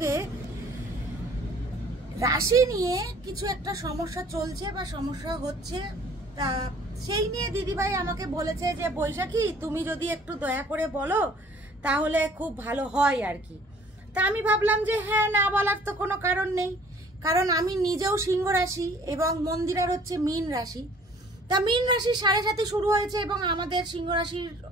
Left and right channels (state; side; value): normal; both; correlation 0.54